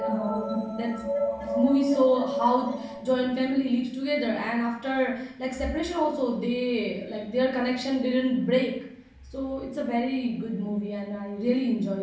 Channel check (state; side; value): identical; both; correlation 1.00